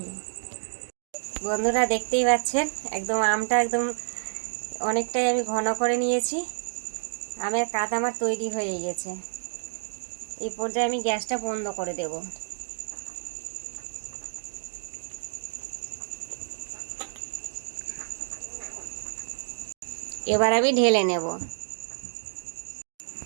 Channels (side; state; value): left; silent; 59 dB below the other